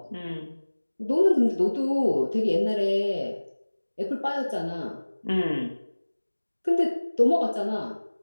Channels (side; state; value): both; inverted; correlation -1.00